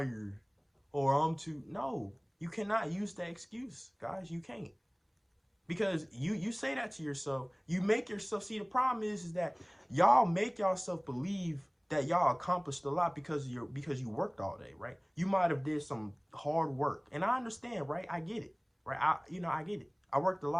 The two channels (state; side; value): identical; both; correlation 1.00